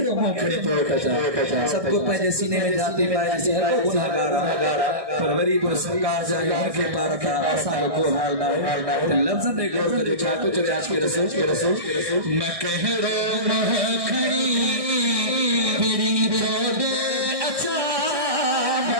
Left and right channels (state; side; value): late; left; 1.6 ms